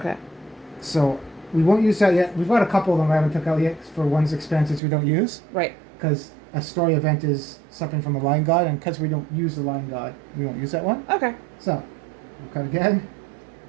So we won't use that yet. We've got a couple of them I haven't took out yet for one's expansions we don't use. Right. Because a story event is something from the Lion God, and because we don't use the Lion God, we won't use that one. Okay. So We'll cut again.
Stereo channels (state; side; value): drops out; left; at 4.8 s